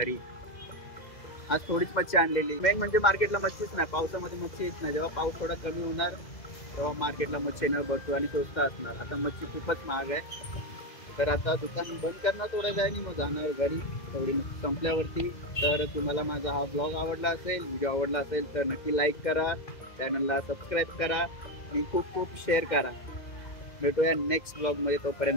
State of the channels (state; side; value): late; right; 2.0 ms